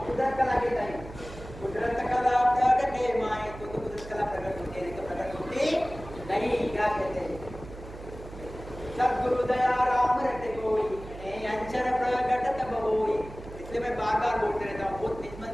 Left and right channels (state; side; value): noise; right; hum, 14 dB below the sound